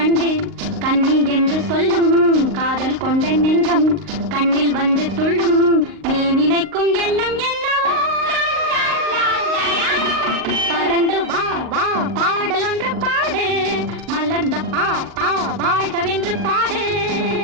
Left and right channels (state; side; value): late; left; 38 ms